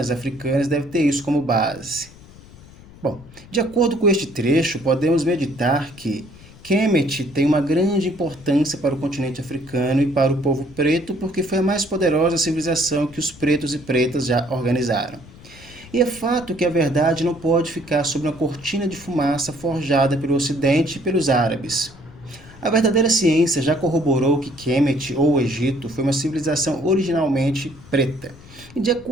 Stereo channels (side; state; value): left; noise; rumble, 21 dB below the sound